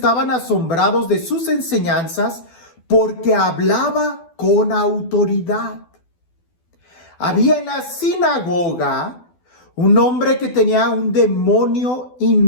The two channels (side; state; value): right; late; 12 ms